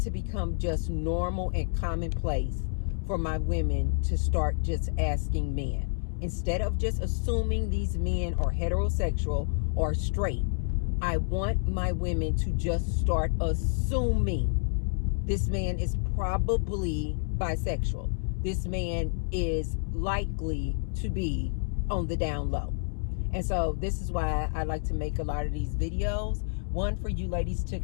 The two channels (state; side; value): silent; right; 59 dB below the other